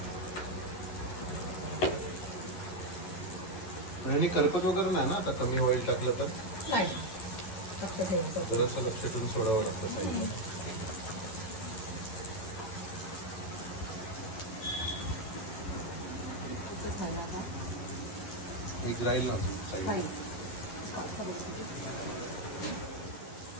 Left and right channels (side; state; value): right; late; 11 ms